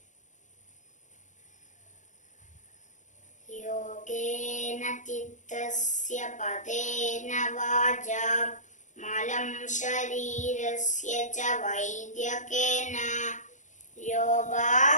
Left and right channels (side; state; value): right; late; 0.36 ms